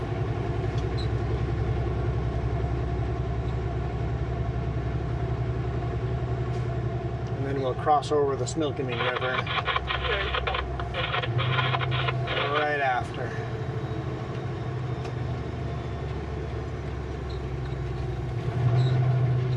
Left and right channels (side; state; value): both; identical; correlation 1.00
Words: And then we'll cross over the Similkameen River right after.